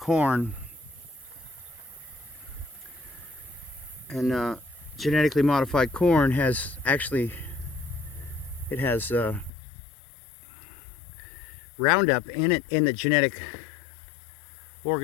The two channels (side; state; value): right; drops out; at 9.5 s